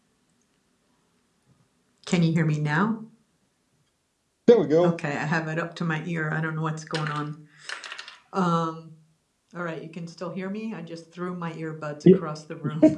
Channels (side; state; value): both; identical; correlation 1.00